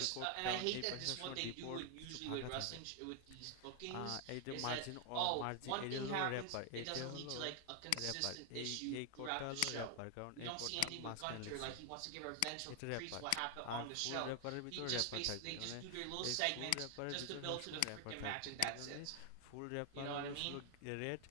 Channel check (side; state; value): both; different; correlation 0.01